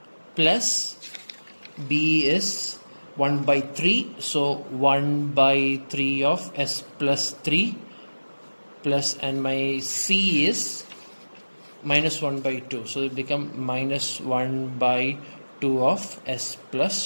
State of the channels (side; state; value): both; inverted; correlation -1.00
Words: plus b is 1 by 3, so 1 by 3 of s plus 3 plus, and my c is minus 1 by 2, so it become minus 1 by 2 of s